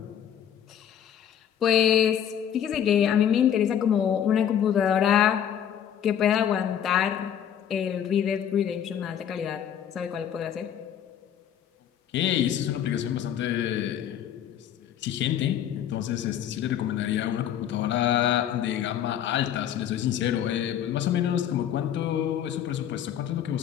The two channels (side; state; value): right; quieter; 9.6 dB